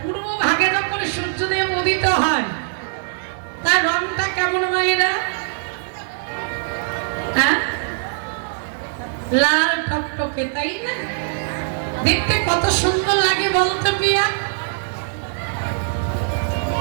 পূর্ব ভাগে যখন সূর্যদেব উদিত হয়, তার রংটা কেমন মায়েরা? হ্যাঁ, লাল টকটকে, তাই না? দেখতে কত সুন্দর লাগে বলতো পিয়া।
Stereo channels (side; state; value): left; silent; digital silence